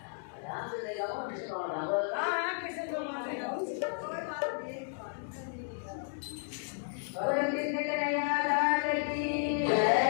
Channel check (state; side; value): silent; right; digital silence